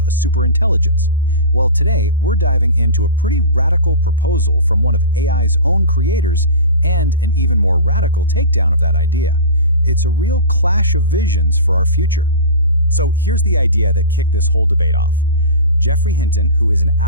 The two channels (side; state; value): both; inverted; correlation -0.31